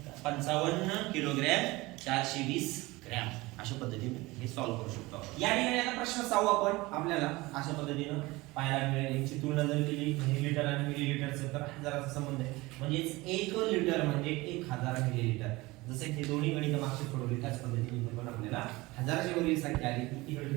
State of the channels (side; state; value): left; quieter; 21.4 dB